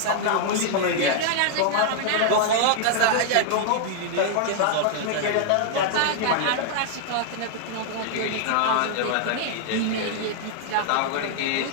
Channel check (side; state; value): both; different; correlation -0.01